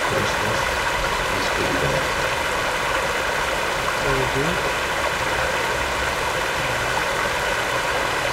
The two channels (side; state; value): both; identical; correlation 1.00